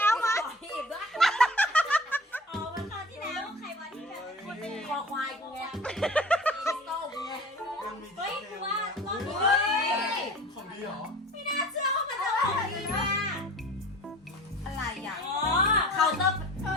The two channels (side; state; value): both; normal; correlation 0.42